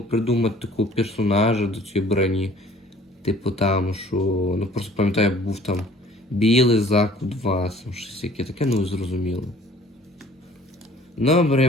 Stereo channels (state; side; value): normal; both; correlation 0.52